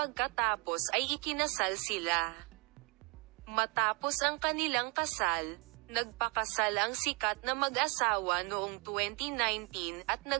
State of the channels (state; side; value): quieter; left; 29.3 dB